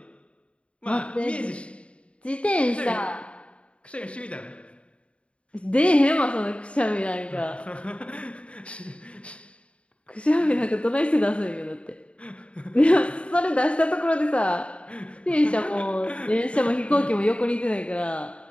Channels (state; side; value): late; right; 0.060 ms